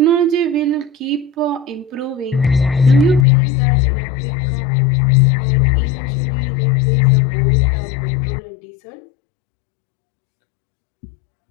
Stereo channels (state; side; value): drops out; right; at 3.2 s